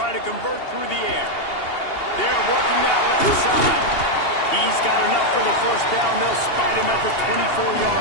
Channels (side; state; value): right; late; 2.8 ms